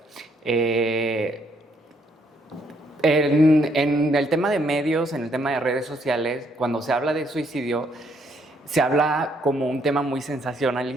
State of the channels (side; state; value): both; normal; correlation 0.70